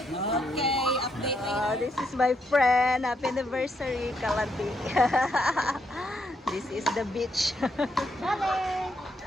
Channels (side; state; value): both; normal; correlation 0.77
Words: update. This is my friend. Happy anniversary, Kalandi. This is the beach. Charlie.